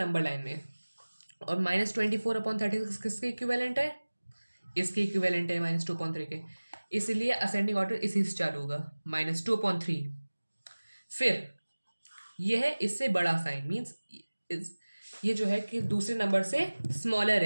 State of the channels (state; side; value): inverted; both; correlation -1.00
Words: लाइन में। और -24/36 किसके इक्विवेलेंट है? इसके इक्विवेलेंट है -2/3 के। इसलिए असेंडिंग ऑर्डर इसी से चालू होगा, -2/3। फिर यह है इससे बड़ा साइन, मीन्स ये जो है कि दूसरे नंबर से स्मॉलर